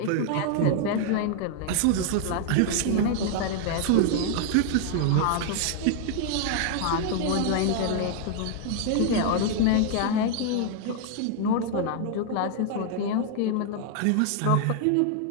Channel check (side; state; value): both; different; correlation 0.00